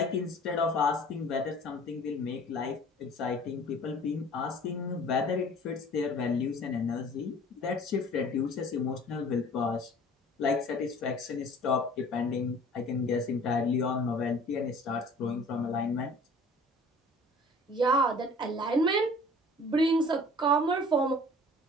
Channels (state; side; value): normal; both; correlation 0.48